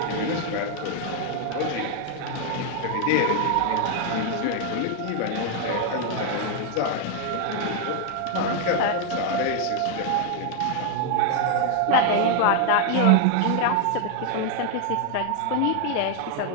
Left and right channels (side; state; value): both; different; correlation 0.00